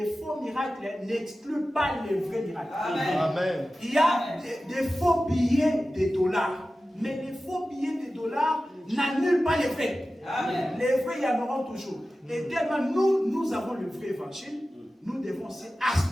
faux miracles n'excluent pas les vrais miracles. Amen. Il y a des faux billets de dollars. Mais les faux billets de dollars n'annulent pas les vrais. Amen. Les vrais, il y en auront toujours. Et tellement nous avons le vrai évangile, nous devons aussi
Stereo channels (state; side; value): normal; both; correlation 0.95